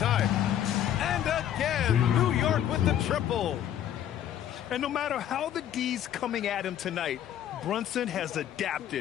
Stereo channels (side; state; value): right; quieter; 10.8 dB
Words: And again, New York with the triple. And no matter how the D's coming at him tonight, Brunson has